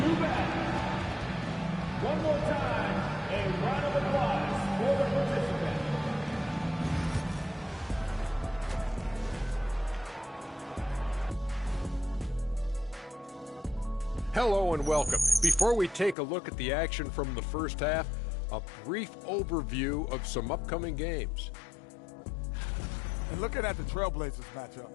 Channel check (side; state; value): right; drops out; at 16.2 s